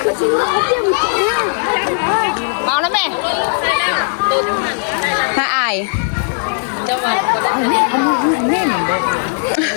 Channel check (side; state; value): right; silent; digital silence